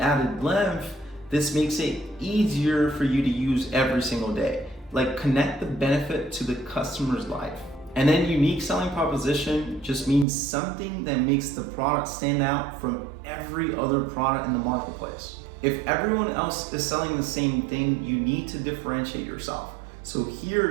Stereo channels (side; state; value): left; drops out; at 10.2 s